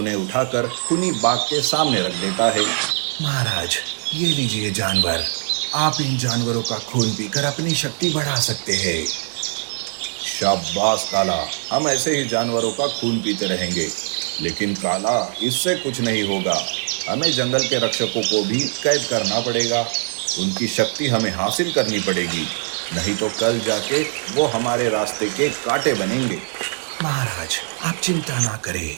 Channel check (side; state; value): left; silent; 58 dB below the other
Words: उठाकर खूनी बाघ के सामने रख देता है। महाराज, ये लीजिए जानवर। आप इन जानवरों का खून पीकर अपनी शक्ति बढ़ा सकते हैं। शाबाश काला, हम ऐसे ही जानवरों का खून पीते रहेंगे। लेकिन काला, इससे कुछ नहीं होगा। हमें जंगल के रक्षकों को भी कैद करना पड़ेगा। उनकी शक्ति हमें हासिल करनी पड़ेगी, नहीं तो कल जाके वो हमारे रास्ते के कांटे बनेंगे। महाराज, आप चिंता ना करें।